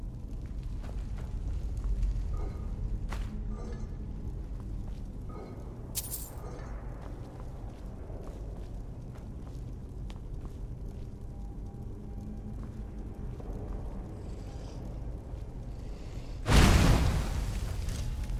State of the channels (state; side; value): identical; both; correlation 1.00